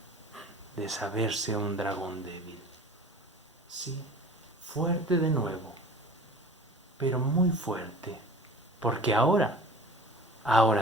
de saberse un dragón débil. Sí, fuerte de nuevo, pero muy fuerte, porque ahora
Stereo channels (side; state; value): both; normal; correlation 0.41